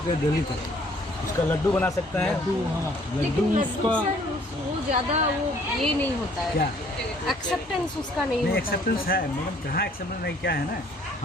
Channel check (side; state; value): both; normal; correlation 0.60